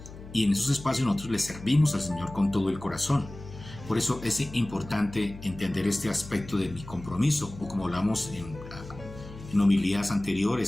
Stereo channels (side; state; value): left; noise; hum, 15 dB below the sound